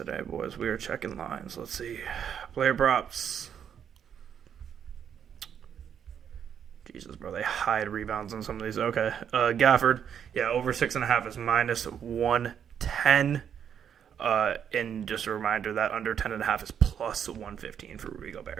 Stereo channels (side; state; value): left; quieter; 8.4 dB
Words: boys. We are checking lines. Let's see. Player props. Jesus, bro. They hide rebounds on some of these. Okay. Gafford. Yeah, over 6.5 is minus 110. And just a reminder that under 10.5 is plus 115 for Rudy